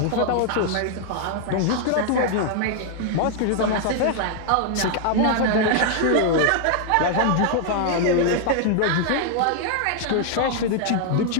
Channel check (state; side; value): different; both; correlation 0.00